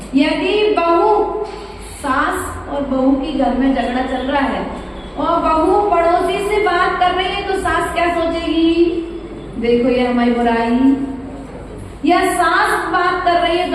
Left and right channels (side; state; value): both; identical; correlation 1.00